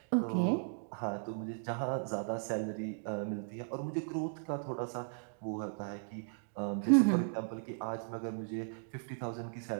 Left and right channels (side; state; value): left; silent; digital silence